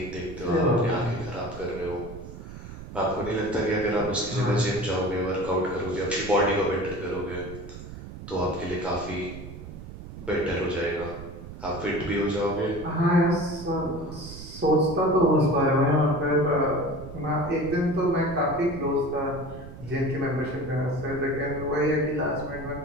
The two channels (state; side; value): noise; right; rumble, 12 dB below the sound